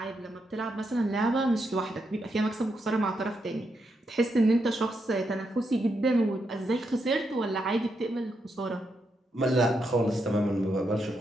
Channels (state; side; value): normal; both; correlation 0.82